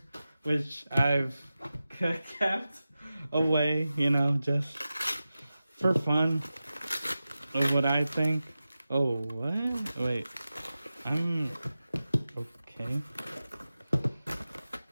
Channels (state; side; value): inverted; both; correlation -0.94